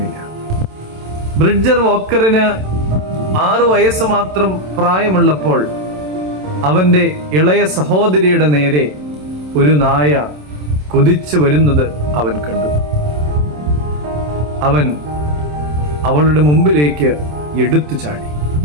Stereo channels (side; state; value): left; late; 27 ms